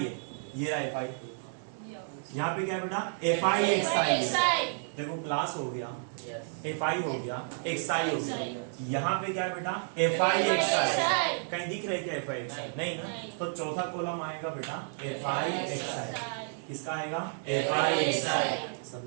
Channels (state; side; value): silent; left; digital silence